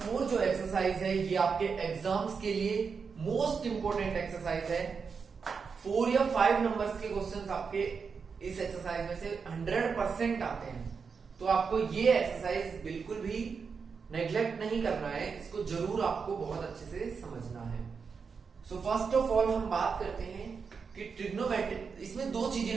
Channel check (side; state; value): left; quieter; 5.6 dB